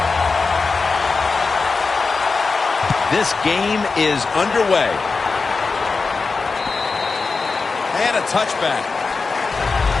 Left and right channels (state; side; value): quieter; right; 4.4 dB